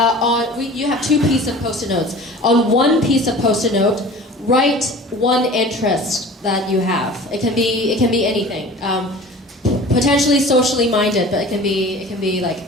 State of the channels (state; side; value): normal; both; correlation 0.41